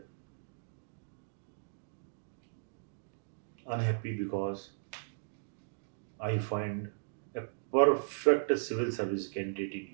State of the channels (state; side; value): silent; left; digital silence